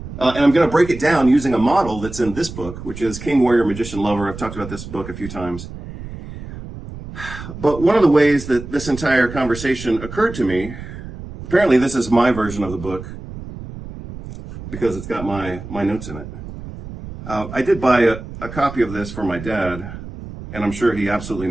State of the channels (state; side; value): noise; right; rumble, 12 dB below the sound